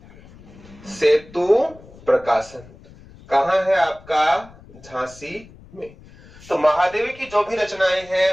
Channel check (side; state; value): left; noise; rumble, 22 dB below the sound